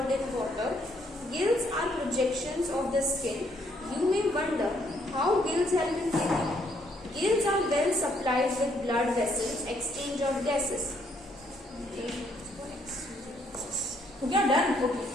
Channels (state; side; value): normal; both; correlation 0.70